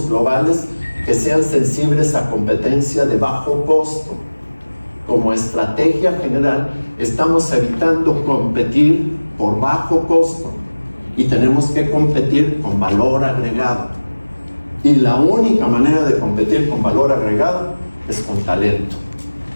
globales que sean sensibles a competencia de bajo costo. Como estrategia general, estamos evitando competir por bajo costo y tenemos que competir con valor agregado. Y la única manera de competir con valor agregado es con talento.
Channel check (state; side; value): inverted; both; correlation -1.00